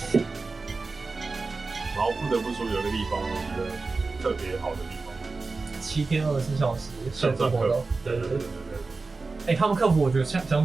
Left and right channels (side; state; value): left; quieter; 3.9 dB